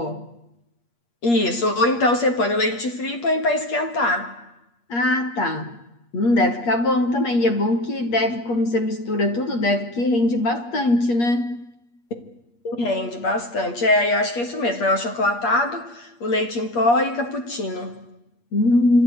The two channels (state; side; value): late; right; 8.5 ms